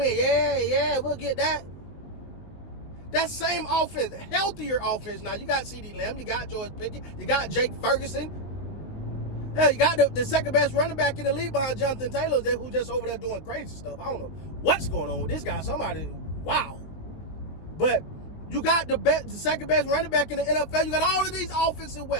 Yeah, we'll get that. That same offense, healthier offense now. You got CD Lamb, you got George Pickens, you got Jake Ferguson. Hell, you got the second best running back in the league behind Jonathan Taylor, who's just over there doing crazy stuff. I don't know what's going on with this guy. Wow. But you got the second best running back in the NFL. You got all of these offensive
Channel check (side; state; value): right; late; 19 ms